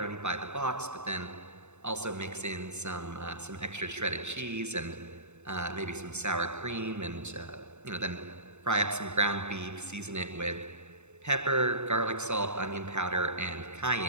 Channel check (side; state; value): left; late; 0.82 ms